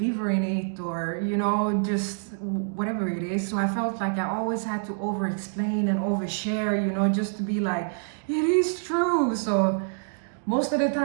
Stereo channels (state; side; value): silent; left; digital silence